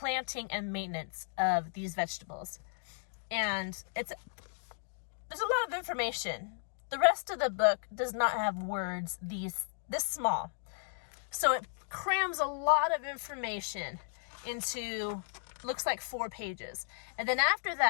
and maintenance of these vegetables. And there's a lot of information. The rest of the book does not have words this small. So it crams a lot of information into, looks like 4 pages. And then after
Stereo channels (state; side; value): silent; right; digital silence